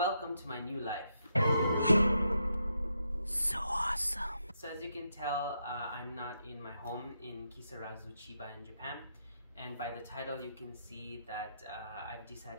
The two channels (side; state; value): both; inverted; correlation -0.81